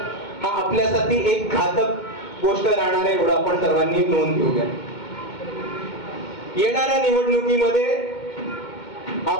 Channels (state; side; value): late; right; 2.2 ms